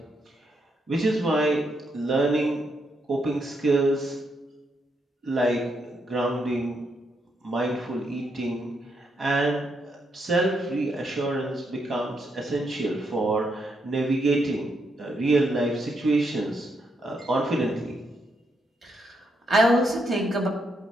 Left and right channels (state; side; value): normal; both; correlation 0.79